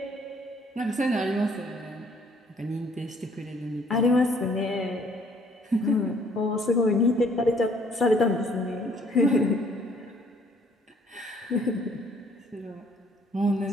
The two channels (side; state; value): both; normal; correlation 0.61